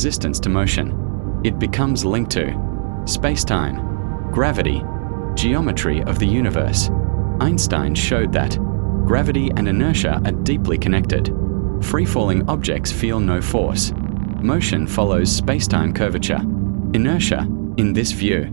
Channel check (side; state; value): left; silent; digital silence